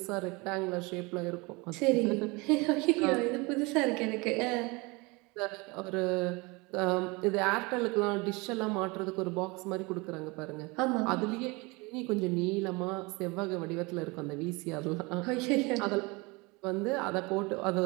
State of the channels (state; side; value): quieter; left; 26.1 dB